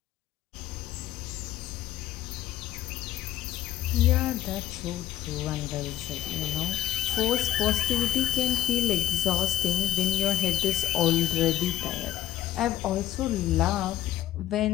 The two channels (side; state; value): right; quieter; 12.5 dB